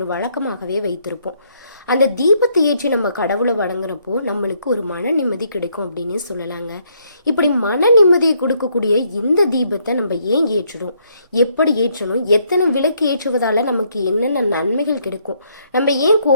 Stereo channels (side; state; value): both; inverted; correlation -0.70